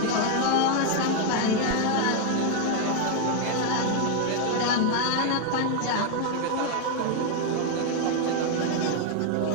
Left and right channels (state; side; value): different; both; correlation 0.01